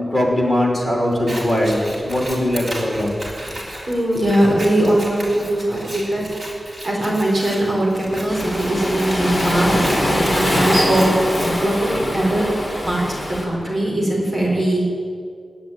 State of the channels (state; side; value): normal; both; correlation 0.93